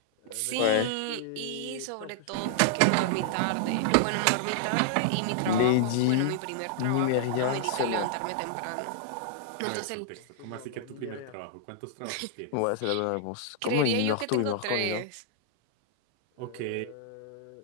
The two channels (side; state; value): both; different; correlation -0.01